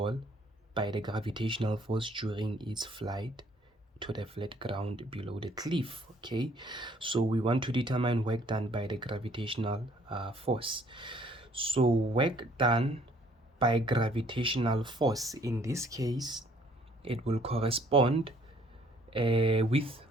by the gravitational force during its flight to the flat ground below the cliff. Okay, so we want to determine work done by the gravitational force. So work done by gravitational force, in this case it will correspond with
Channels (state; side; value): normal; both; correlation 0.61